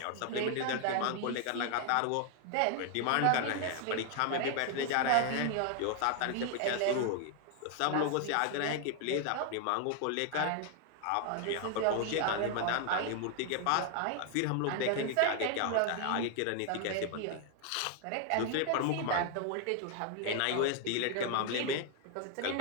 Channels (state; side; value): different; both; correlation 0.00